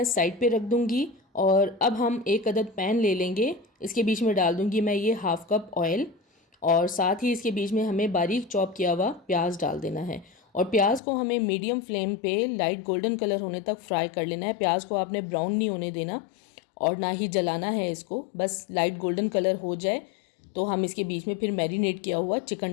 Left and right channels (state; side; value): drops out; right; at 11.0 s